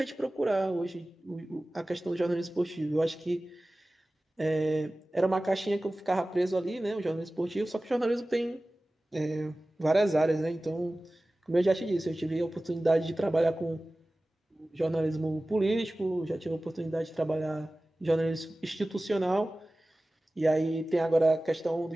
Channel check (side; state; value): both; normal; correlation 0.97